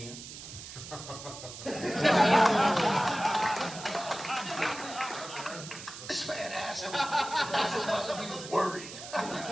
This man asked him if he was worried.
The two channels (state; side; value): noise; right; hiss, 12 dB below the sound